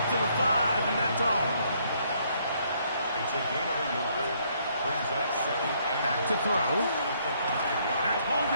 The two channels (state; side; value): inverted; both; correlation -0.68